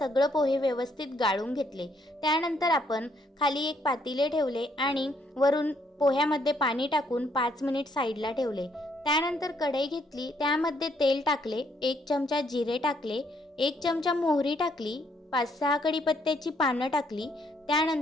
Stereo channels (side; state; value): both; normal; correlation 0.70